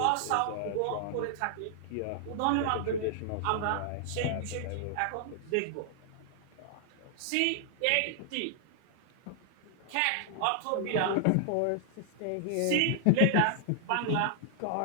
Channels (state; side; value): different; both; correlation 0.00